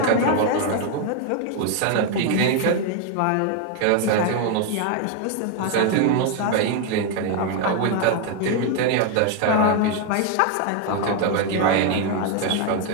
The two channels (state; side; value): different; both; correlation 0.01